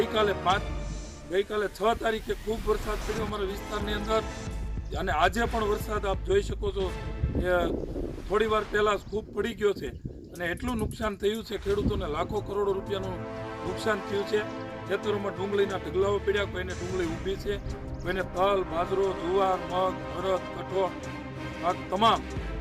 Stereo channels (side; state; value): both; identical; correlation 1.00